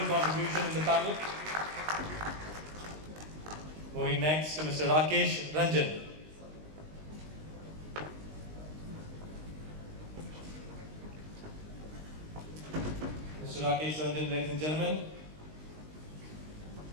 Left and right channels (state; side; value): late; left; 19 ms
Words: contribution in the panel. Moving next to Mr. Rakesh Ranjan. Mr. Rakesh Ranjan, ladies and gentlemen.